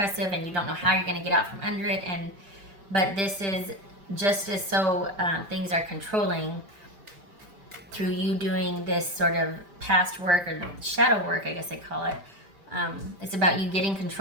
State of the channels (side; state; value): left; late; 5.1 ms